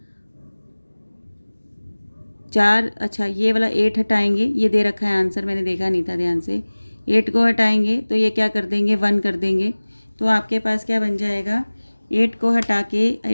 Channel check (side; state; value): both; inverted; correlation -1.00